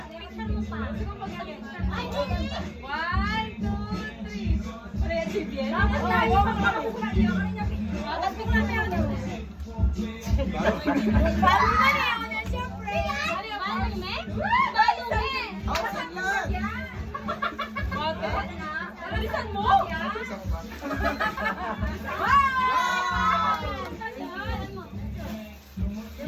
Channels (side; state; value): both; identical; correlation 1.00